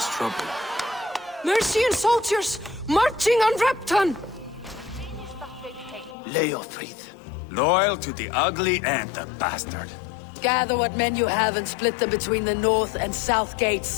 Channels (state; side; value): drops out; right; at 6.2 s